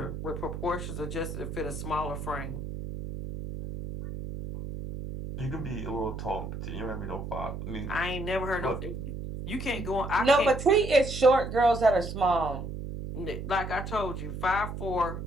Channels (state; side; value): noise; right; hum, 7 dB below the sound